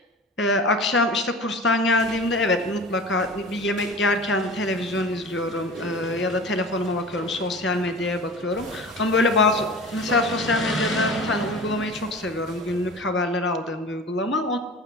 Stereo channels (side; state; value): both; normal; correlation 0.36